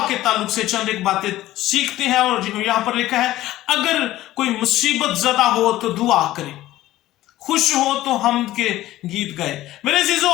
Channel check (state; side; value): quieter; right; 15.3 dB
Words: के ताल्लुक से चंद एक बातें सीखते हैं। और यहां पर लिखा है, अगर कोई मुसीबत ज़दा हो तो दुआ करें, खुश हो तो हम के गीत गाए। मेरे